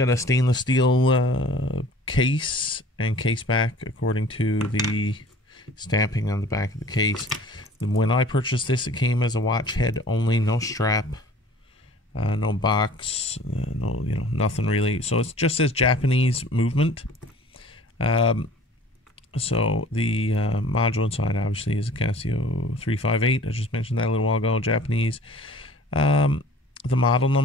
a stainless steel case and case back, according to the stamping on the back of the case. When I purchased this, it came as a watch head only, no strap, no box, no, nothing really. So it just says Japanese movement. So the module inside obviously is a Casio 358. I just mentioned that a little while ago, Japanese. The model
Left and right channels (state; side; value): normal; both; correlation 0.48